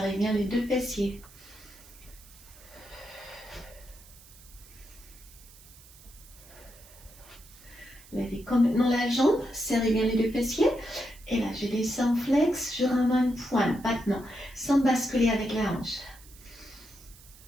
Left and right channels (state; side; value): noise; right; hiss, 22 dB below the sound